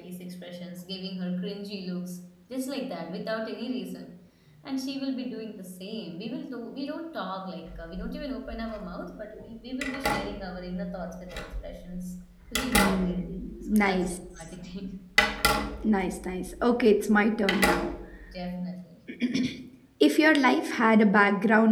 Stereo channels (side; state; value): both; identical; correlation 1.00